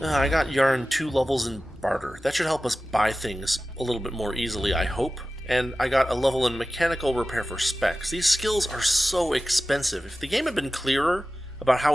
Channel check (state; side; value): normal; both; correlation 0.95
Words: got Yarn 2 levels in Barter. That should help us buy things a little bit more easily, I hope. And I got a level in Mechanical Repair for Specs. These skills are so expensive. If the game had been clearer about how